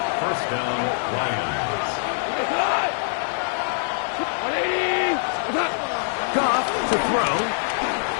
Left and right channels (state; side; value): silent; right; digital silence